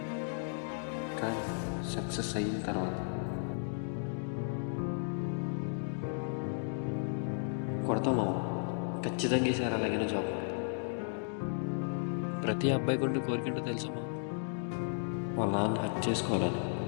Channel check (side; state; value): right; silent; digital silence